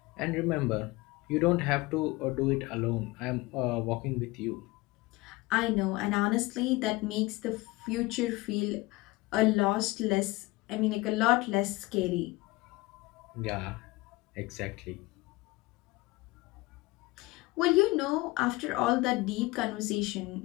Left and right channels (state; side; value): quieter; right; 21.5 dB